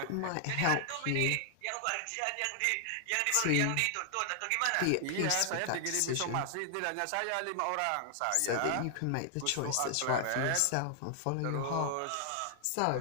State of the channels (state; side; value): different; both; correlation 0.00